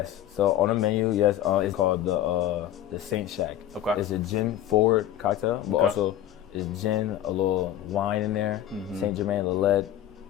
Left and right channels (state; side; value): quieter; right; 12.0 dB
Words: So on the menu, yes, it's called the Saint Shack. Okay. It's a gin forward cocktail, but also it's gin, a little wine in there, Saint Germain, Lillet,